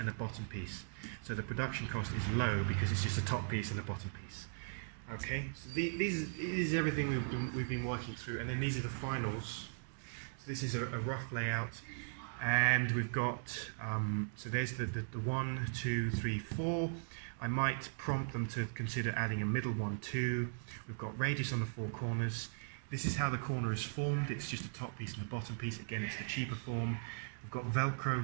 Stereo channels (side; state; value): left; silent; digital silence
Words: a bottom piece. So the production cost is low because it's just a top piece and a bottom piece. Okay, so this is everything we've been working through, and then these are the finals. So this is a rough layout. And we've got, so there's the 1, 2, 3, 4. I might prompt them to consider adding a middle one too. We've got radius on the 4 corners. This is how the corner is formed. It's just a top piece and a bottom piece. Again, it's the cheaper form. We've got